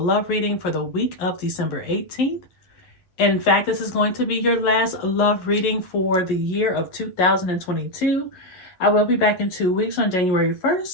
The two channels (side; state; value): right; late; 11 ms